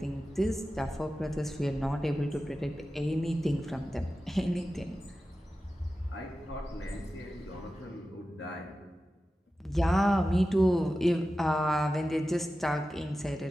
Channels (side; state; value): both; normal; correlation 0.93